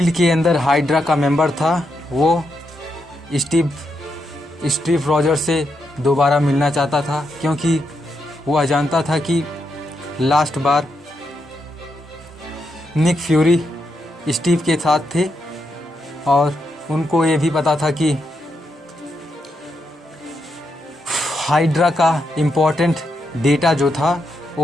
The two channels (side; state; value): both; normal; correlation 0.82